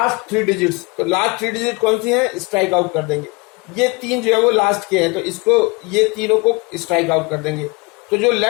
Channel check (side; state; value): right; quieter; 27.9 dB